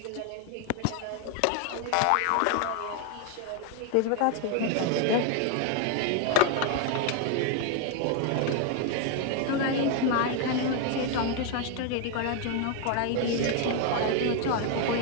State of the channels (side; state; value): both; different; correlation 0.01